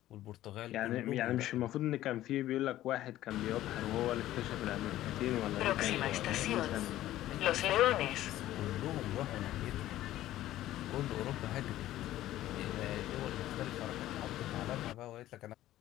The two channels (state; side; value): quieter; right; 14.2 dB